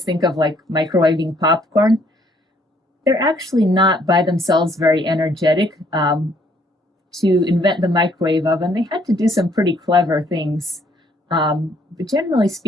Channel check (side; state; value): both; normal; correlation 0.65